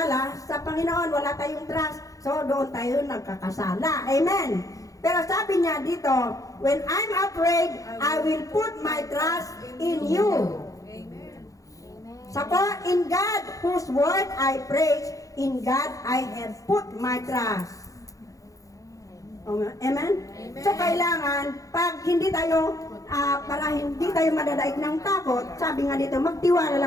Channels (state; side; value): late; right; 0.16 ms